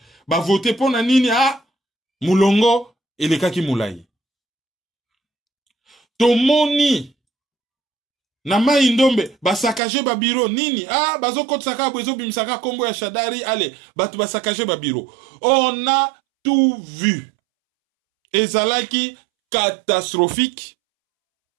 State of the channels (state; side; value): drops out; left; at 9.8 s